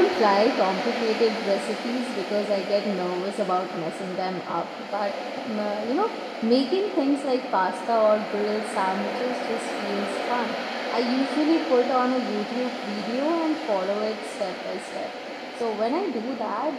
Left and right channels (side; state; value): both; identical; correlation 1.00